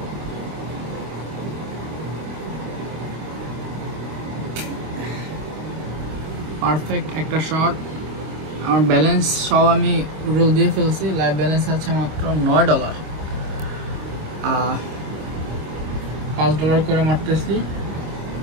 Perfect একটা শট। আমার ব্যালেন্স সব আমি রোল দিয়ে ফেলছি, লাইভ ব্যালেন্স আছে মাত্র $9। $5 করে মারতেছি।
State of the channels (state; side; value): late; left; 25 ms